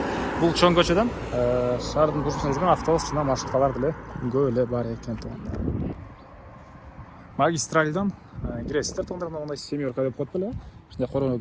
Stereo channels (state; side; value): identical; both; correlation 1.00